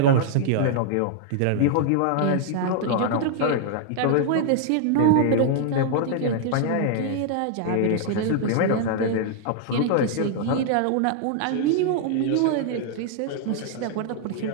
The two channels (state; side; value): different; both; correlation -0.01